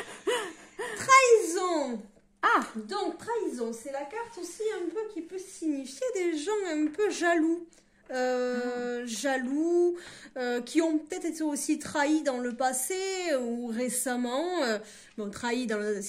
Trahison. Ah. Donc, trahison, c'est la carte aussi un peu qui peut signifier des gens un peu jaloux. Qui ont peut-être été aussi trahis dans le passé ou récemment. Bon, trahis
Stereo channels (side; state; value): both; identical; correlation 1.00